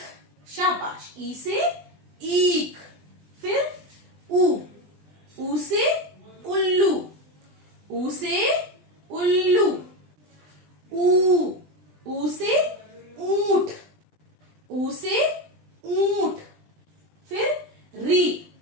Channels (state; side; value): late; left; 20 ms